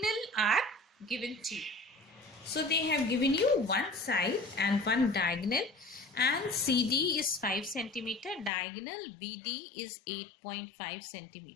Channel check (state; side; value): drops out; right; at 8.5 s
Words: are given to you. So they have given you one side and one diagonal, and CD is 5 centimeter, diagonal BD is 8.5